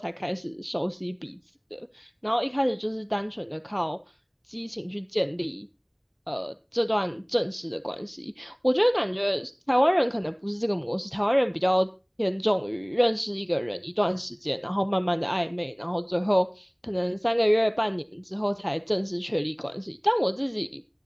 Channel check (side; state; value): both; identical; correlation 1.00